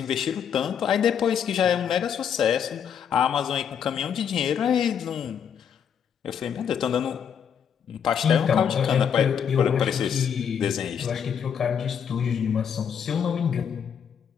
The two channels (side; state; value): right; quieter; 7.9 dB